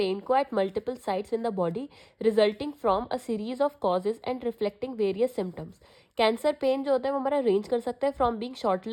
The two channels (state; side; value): identical; both; correlation 1.00